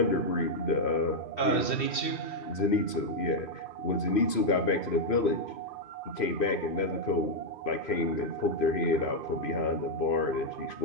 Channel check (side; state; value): right; late; 2.5 ms